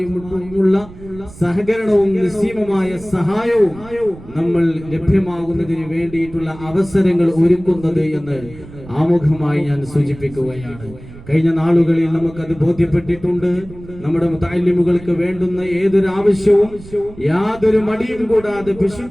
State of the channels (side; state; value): right; noise; rumble, 17 dB below the sound